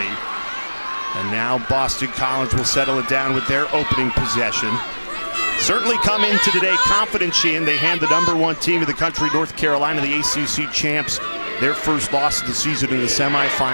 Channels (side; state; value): both; inverted; correlation -1.00